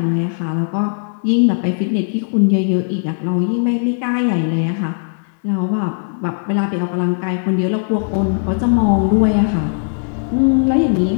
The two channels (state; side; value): silent; right; 68 dB below the other